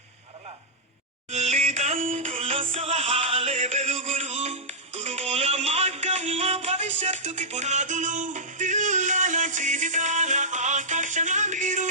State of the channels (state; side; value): normal; both; correlation -0.11